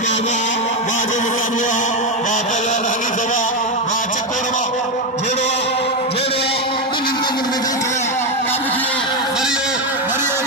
बाजो मुकाबला बाबा हनीफ बा चकोरवा जेड़ो जेड़ो कुन में देख काबू किए मरियो मरियो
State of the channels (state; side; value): normal; both; correlation 0.09